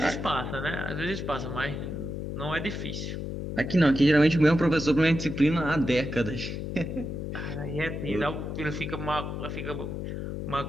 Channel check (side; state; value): left; noise; hum, 5 dB below the sound